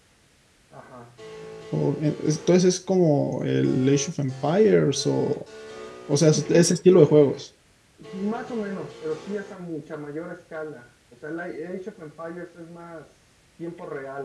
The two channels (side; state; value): both; identical; correlation 1.00